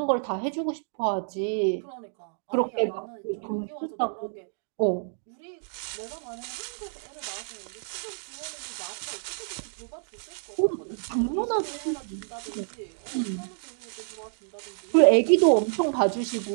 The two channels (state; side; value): silent; left; digital silence